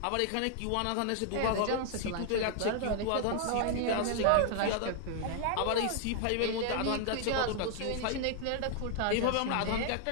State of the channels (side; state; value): both; different; correlation 0.00